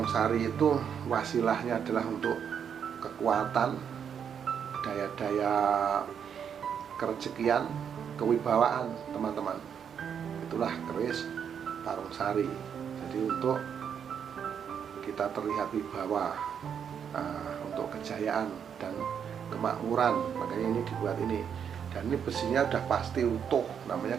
Sari itu wasilahnya adalah untuk kekuatan, daya-daya kerejekian, kewibawaan teman-teman. Itulah keris Parung Sari. Jadi untuk kita terlihat wibawa, untuk kejayaan dan kemakmuran, makanya ini dibuat ini. Dan ini besinya udah pasti utuh, namanya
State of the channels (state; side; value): quieter; left; 7.8 dB